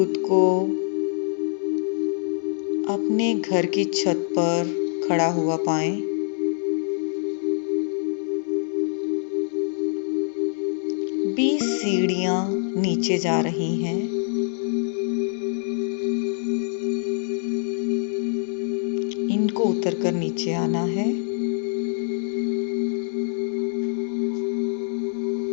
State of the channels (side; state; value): right; silent; digital silence